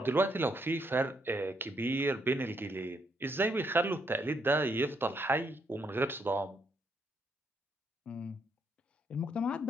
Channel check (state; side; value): normal; both; correlation 0.74